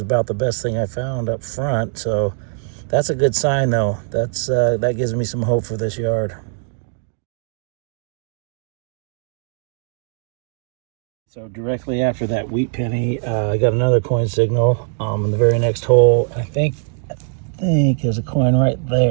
about the best thing I found up front. So that's a good sign, though. That gives me some hope for this yard. So directly after that wheat penny, I got another coin signal in the very next hole. I think there's a coin right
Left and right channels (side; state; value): left; silent; 59 dB below the other